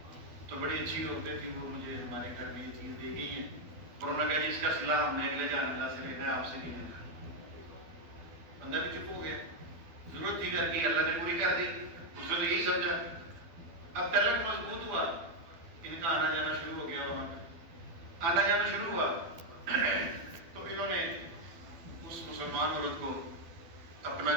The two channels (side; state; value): left; late; 12 ms